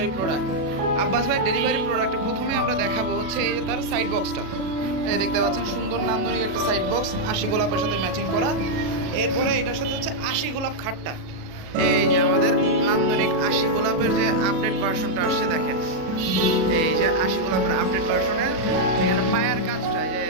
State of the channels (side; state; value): left; late; 37 ms